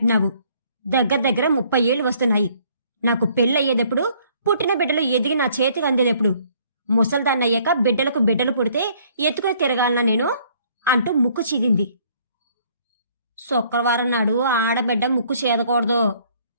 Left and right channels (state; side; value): inverted; both; correlation -0.62